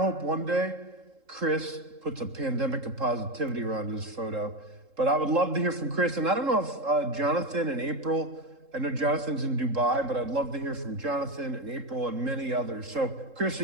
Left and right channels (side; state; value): left; late; 3.7 ms